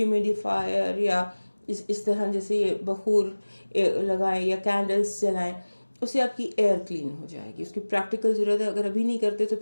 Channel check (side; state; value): both; inverted; correlation -1.00